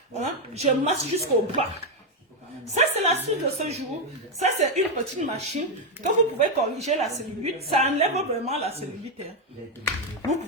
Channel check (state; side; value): normal; both; correlation 0.04